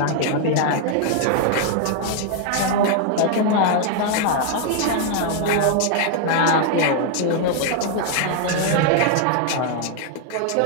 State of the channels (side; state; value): both; different; correlation 0.00